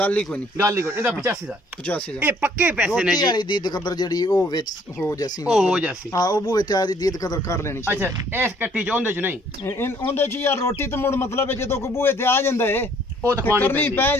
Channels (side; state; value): both; normal; correlation 0.61